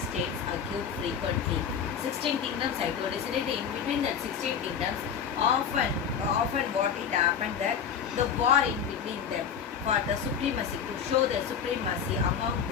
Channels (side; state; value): right; quieter; 7.5 dB